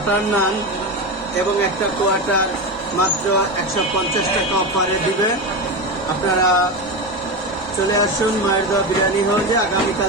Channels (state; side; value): normal; both; correlation 0.19